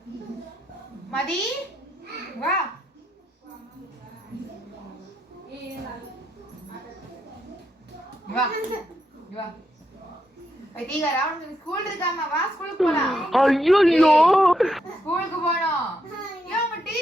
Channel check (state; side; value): normal; both; correlation 0.80